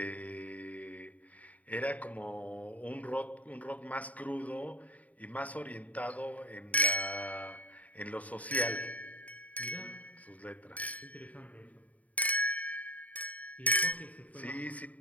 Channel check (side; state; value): right; late; 0.071 ms